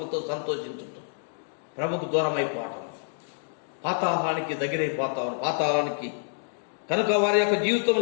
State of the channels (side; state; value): right; silent; digital silence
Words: సంతోషించుతూ ప్రభుకు దూరం అయిపోవటం, పాతాళానికి దగ్గరైపోతాం, పాతాళానికి కనుక వారి యొక్క